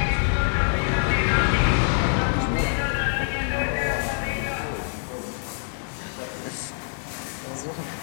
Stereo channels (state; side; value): silent; right; 56 dB below the other